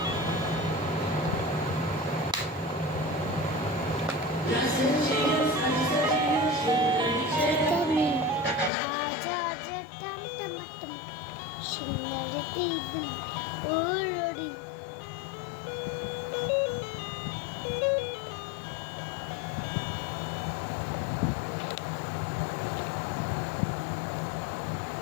टम टम टम,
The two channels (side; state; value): right; drops out; at 8.7 s